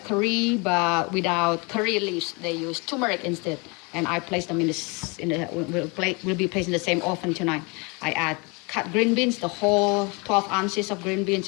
curry, but without curry leaves. They use turmeric instead. And I place them will be placed in the same oven tonight. I add cut green beans, the whole 12 ounces of green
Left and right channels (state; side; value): quieter; right; 29.8 dB